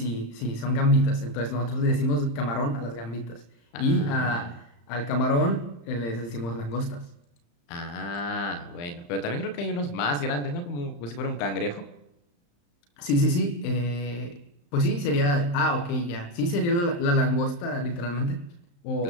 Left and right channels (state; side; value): late; right; 35 ms